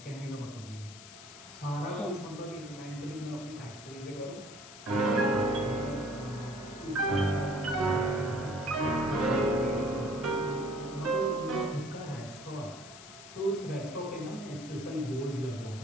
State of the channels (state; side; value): noise; left; hiss, 16 dB below the sound